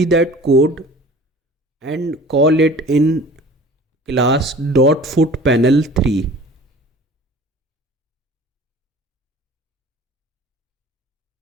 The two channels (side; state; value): both; normal; correlation 0.44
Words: that code and call it in class .footPanel3.